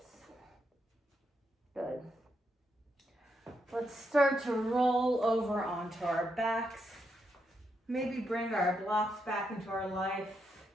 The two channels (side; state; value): both; normal; correlation 0.81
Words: Good. Let's start to roll over onto our backs. Maybe bring our blocks back into our life.